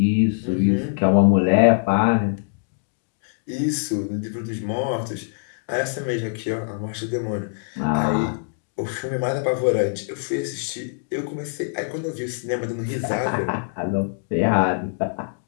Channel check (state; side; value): silent; right; digital silence